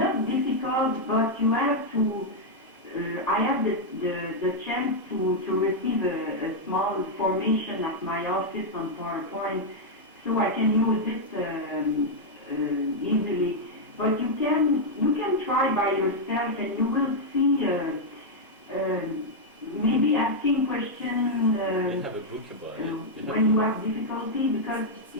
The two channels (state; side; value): normal; both; correlation -0.03